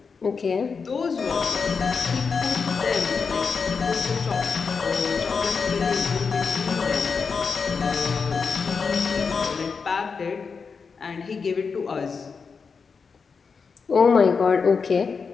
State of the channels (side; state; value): right; quieter; 5.3 dB